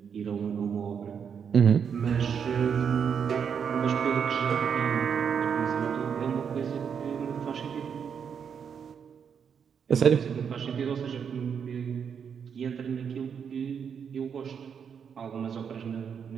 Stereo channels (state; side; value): quieter; left; 7.1 dB